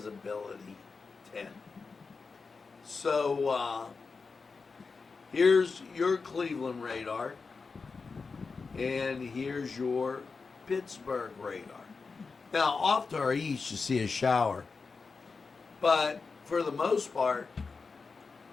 10. So here's your Cleveland radar, and here's your Pittsburgh radar. Now, off to our east, you see a shower, but for the most part,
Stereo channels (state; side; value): quieter; right; 4.6 dB